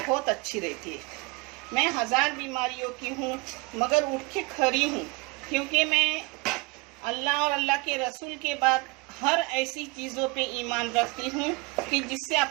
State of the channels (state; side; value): quieter; left; 26.9 dB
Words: अच्छी रहती है। मैं 1000 बीमारियों की हूँ, मगर उठ के खड़ी हूँ, क्योंकि मैं अल्लाह और अल्लाह के रसूल के बाद हर ऐसी चीज़ों पे ईमान रखती हूँ कि जिससे